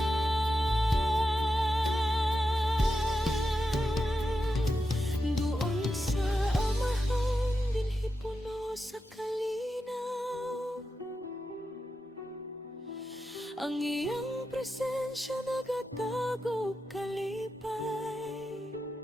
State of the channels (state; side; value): normal; both; correlation 0.89